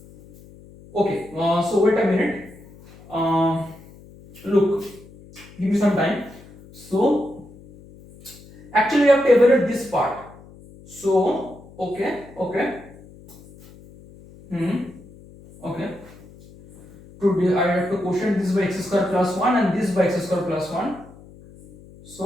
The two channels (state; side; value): noise; left; hum, 22 dB below the sound